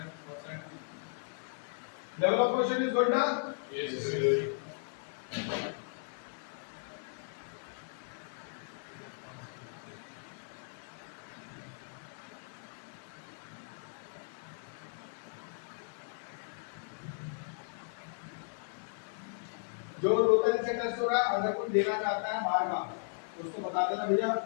level of question is good ना? यस जो 2 तारीख से टेस्ट हो रहा है, अगर कोई देना चाहता है बाहर का तो उसको बता देना भैया,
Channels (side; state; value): right; silent; digital silence